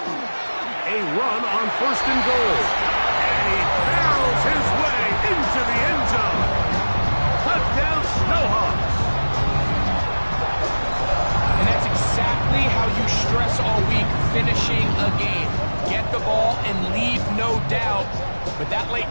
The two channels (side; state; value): both; inverted; correlation -1.00